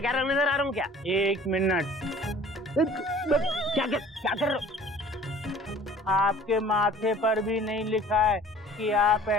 नजर आ रहा हूँ क्या? एक मिनट, क्या कर रहे हो? आपके माथे पर भी नहीं लिखा है कि आप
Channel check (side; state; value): both; normal; correlation 0.48